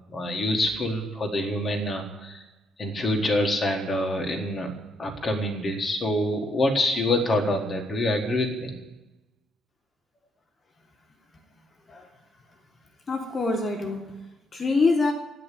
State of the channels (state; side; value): normal; both; correlation 0.74